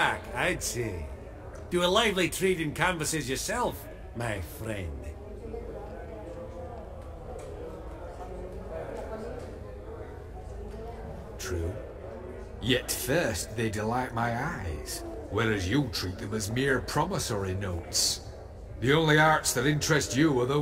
I'd say. Do a lively trade in canvases yourself, my friend. True. Yet first they delight my eyes, whereas you treat them as mere promissory notes. The only arts that interest you are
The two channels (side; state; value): both; identical; correlation 1.00